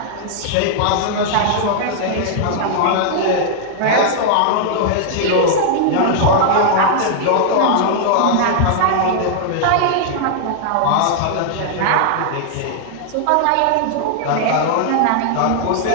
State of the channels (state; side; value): different; both; correlation -0.01